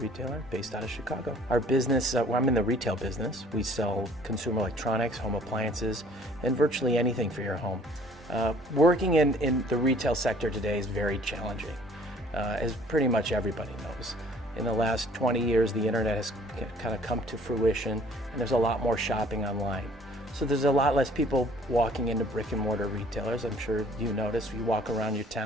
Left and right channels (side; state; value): both; normal; correlation 0.55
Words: based out of Chicago. Our business, I'm in the retail business. We sell consumer electronics, home appliances, and virtually anything for your home. Working in the retail sector today is very challenging, as pretty much everybody knows. In the last 20 years, the internet has kind of come to fruition, and there's a lot more shopping online. So there's a lot less people walking into brick and mortar retailers. I'm sure you notice, you walk around your